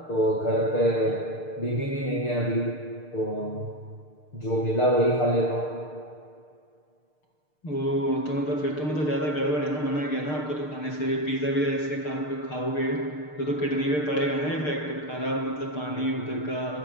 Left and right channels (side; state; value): right; late; 6.6 ms